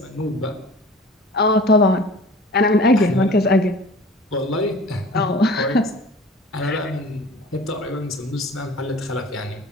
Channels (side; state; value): both; normal; correlation 0.43